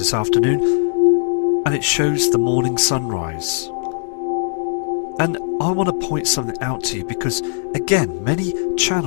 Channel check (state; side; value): silent; right; 66 dB below the other